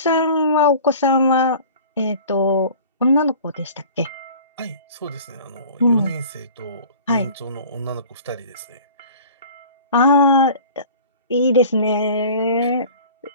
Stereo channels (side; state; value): both; inverted; correlation -0.44